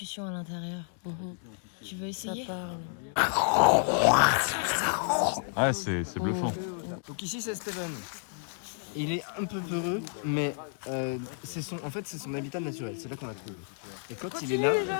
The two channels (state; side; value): silent; right; 57 dB below the other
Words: à l'intérieur. Tu veux essayer? Ouais, c'est bluffant. Donc ici c'est Steven. Il est un peu peureux, mais c'est son habitat naturel. C'est là qu'on l'a trouvé. Et quand il est là,